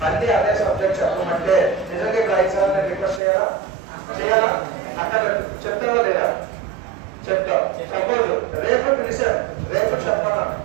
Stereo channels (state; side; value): drops out; left; at 3.2 s